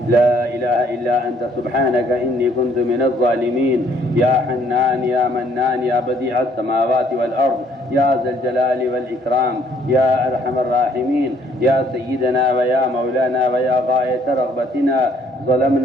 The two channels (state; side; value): normal; both; correlation 0.64